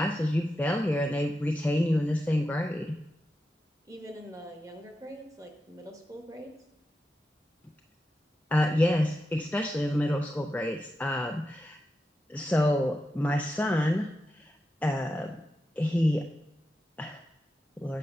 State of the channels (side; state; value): both; normal; correlation 0.89